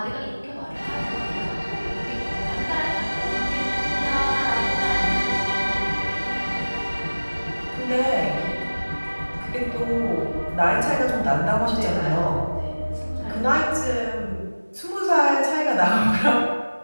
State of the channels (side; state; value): both; inverted; correlation -1.00